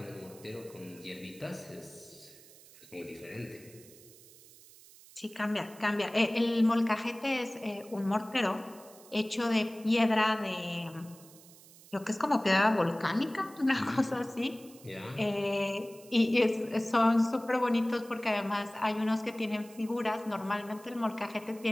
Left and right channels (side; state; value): right; noise; hiss, 22 dB below the sound